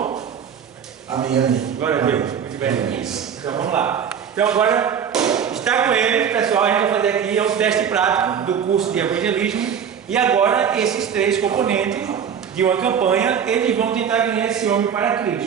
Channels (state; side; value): quieter; left; 7.8 dB